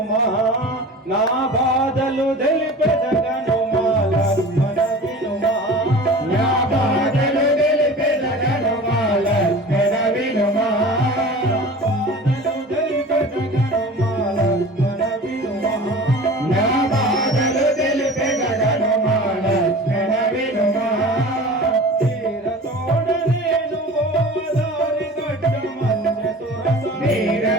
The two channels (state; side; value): normal; both; correlation 0.38